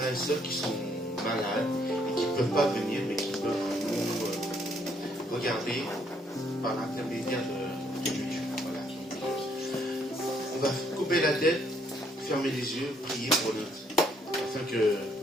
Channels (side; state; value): both; normal; correlation 0.69